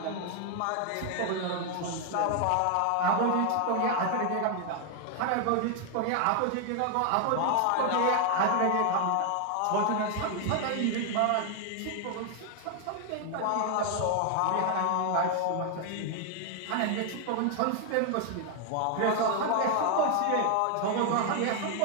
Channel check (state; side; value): different; both; correlation 0.00